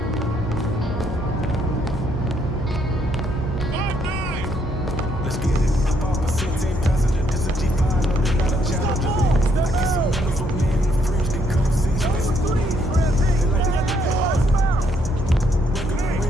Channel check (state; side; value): normal; both; correlation 0.71